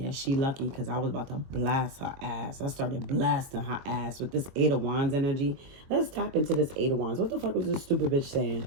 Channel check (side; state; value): left; late; 22 ms